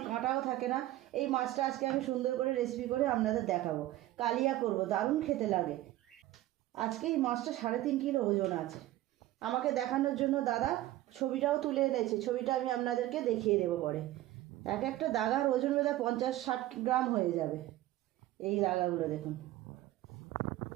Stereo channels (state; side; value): quieter; left; 15.5 dB